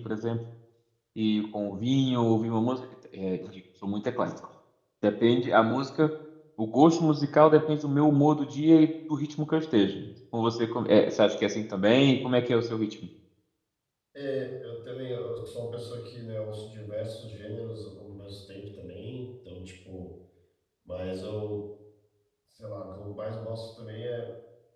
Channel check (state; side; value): identical; both; correlation 1.00